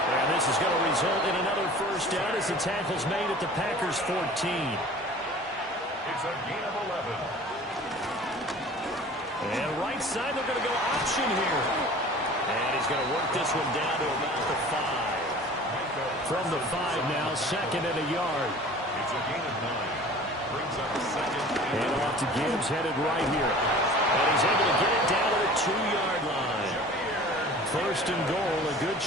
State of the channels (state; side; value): normal; both; correlation 0.43